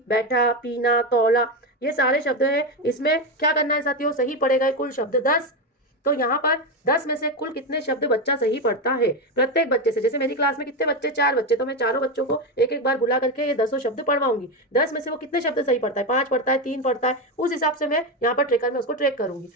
बैठा, पीना, तौला, ये सारे शब्द हैं। इसमें क्या करना है साथियों, सही पढ़े गए कुल शब्द 10। तो यहाँ पर 10 में से कुल कितने शब्द बच्चा सही पढ़ता है, प्रत्येक बच्चे से, जैसे मेरी क्लास में कितने बच्चे, 4 बच्चे, तो मैं चारों बच्चों को एक एक बार बुला करके ये 10 शब्द पढ़वाऊंगी। 10 में से वो कितने शब्द सही पढ़ता है, 5 पढ़ता है, 3 पढ़ता है, उस हिसाब से मैं यहाँ पर ट्रेकर में उसको ट्रैक करूंगी।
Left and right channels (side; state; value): both; normal; correlation 0.13